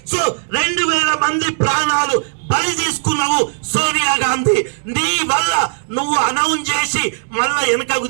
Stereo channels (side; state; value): left; silent; digital silence